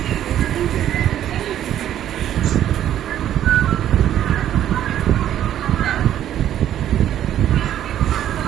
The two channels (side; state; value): left; quieter; 11.3 dB